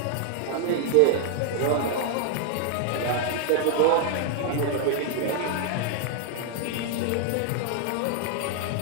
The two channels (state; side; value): different; both; correlation 0.00